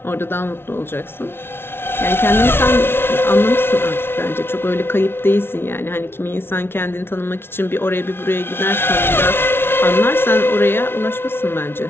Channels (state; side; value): late; right; 0.11 ms